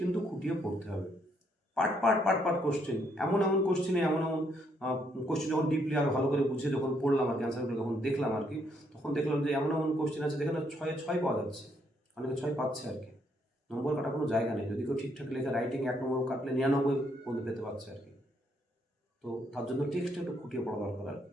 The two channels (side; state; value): both; normal; correlation 0.72